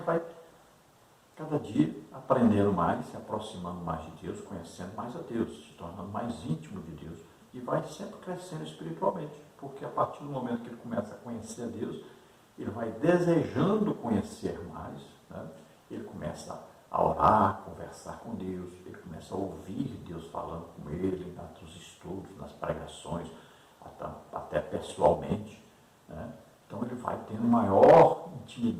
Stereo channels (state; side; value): identical; both; correlation 1.00